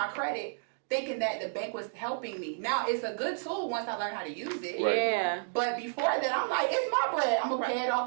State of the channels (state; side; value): silent; left; digital silence